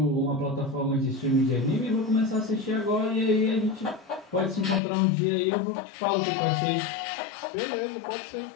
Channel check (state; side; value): drops out; right; at 4.8 s